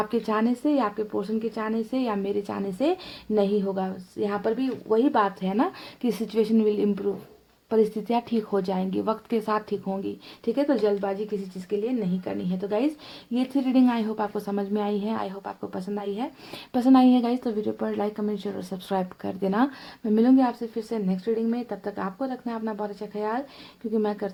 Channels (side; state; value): both; identical; correlation 1.00